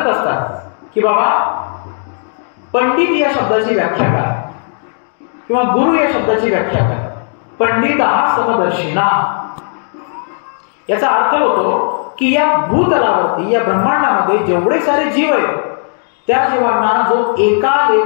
असतात की बाबा पंडित या शब्दाची व्याख्या काय, किंवा गुरु या शब्दाची व्याख्या काय. पंडित हा समदर्शिना, याचा अर्थ होतो की या भूतलावरती या ब्रह्मांडामध्ये जेवढे सारे जीव आहेत त्या जीवांना जो एका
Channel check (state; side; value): silent; right; digital silence